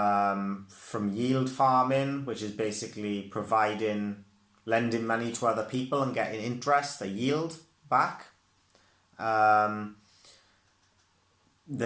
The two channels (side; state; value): both; identical; correlation 1.00